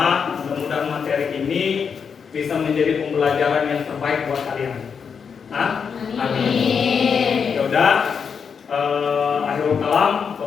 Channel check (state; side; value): quieter; right; 6.4 dB